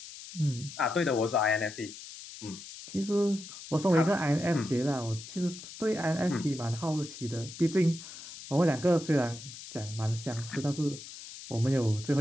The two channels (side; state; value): left; noise; hiss, 13 dB below the sound